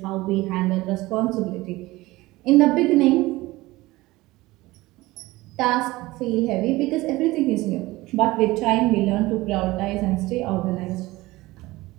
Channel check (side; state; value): left; quieter; 19.4 dB